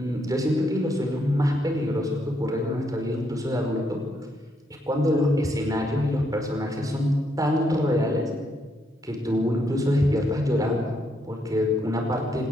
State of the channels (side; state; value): both; normal; correlation 0.76